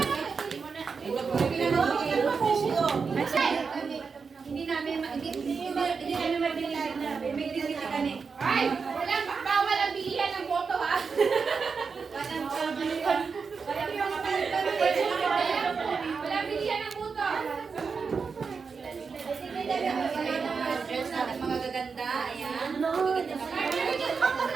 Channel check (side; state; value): left; quieter; 5.3 dB